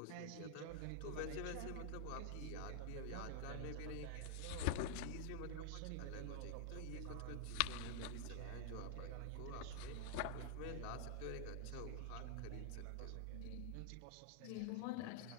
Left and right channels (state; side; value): different; both; correlation -0.01